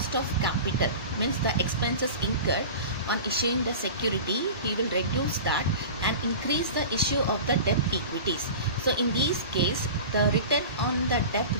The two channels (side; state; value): both; inverted; correlation -0.34